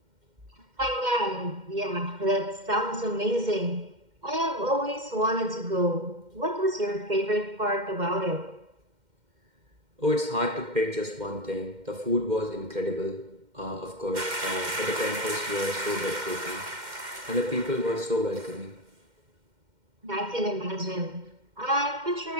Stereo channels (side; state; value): left; late; 2.1 ms